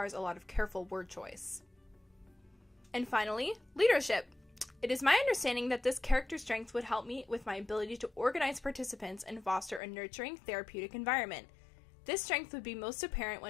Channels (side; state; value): right; drops out; at 9.8 s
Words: a lot of careful word choice. And finally, leadership. It is my understanding that this character strength would help me with my ability to organize participants and foster a nurturing, therapeutic environment. This strength would be most apparent